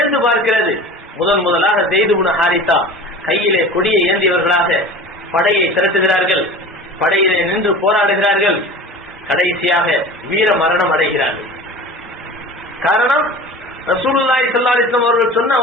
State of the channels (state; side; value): normal; both; correlation 0.37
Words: பார்க்கிறது. முதலாக ஸைத் இப்னு ஹாரிஸா கையிலே கொடியை ஏந்தியவர்களாக படையை திரட்டுகிறார்கள். படையிலே நின்று போராடுகிறார்கள். கடைசியாக வீர மரணம் அடைகிறார்கள். காரணம் ரசூலுல்லாஹி ஸல்லல்லாஹு அலைஹி வஸல்லம் அவர்கள் சொன்ன